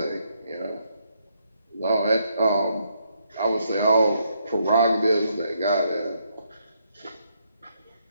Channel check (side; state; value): both; inverted; correlation -0.75